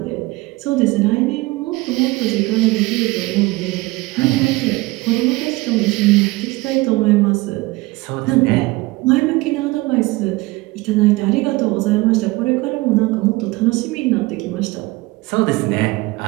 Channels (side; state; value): left; quieter; 21.5 dB